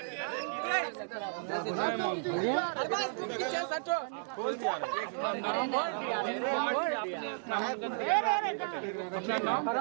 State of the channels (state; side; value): silent; left; digital silence